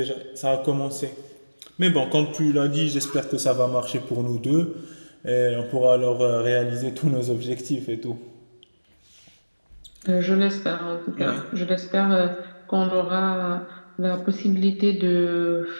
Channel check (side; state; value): both; inverted; correlation -1.00